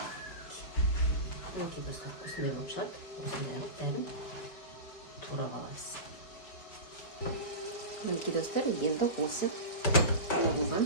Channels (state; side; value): late; right; 5.1 ms